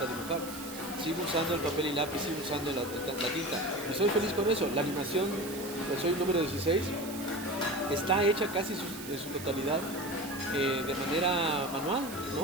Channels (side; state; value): right; noise; hiss, 12 dB below the sound